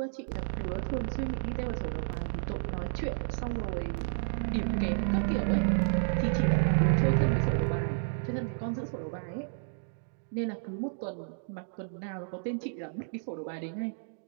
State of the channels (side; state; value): left; silent; digital silence